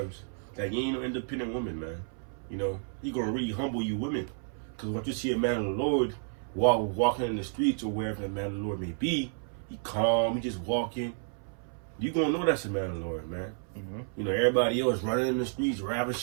that you ain't no independent woman, man. You know, He gonna really humble you women, because once you see a man of the Lord walking in the streets or wherever the man of the Lord may be, he calm, he just walking. You gonna know that's a man of the Lord, man. Mm-hmm. You know, everybody else running in the streets,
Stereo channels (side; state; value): left; silent; 57 dB below the other